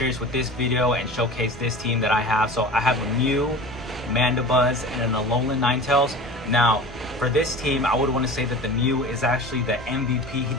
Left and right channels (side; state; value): both; normal; correlation 0.36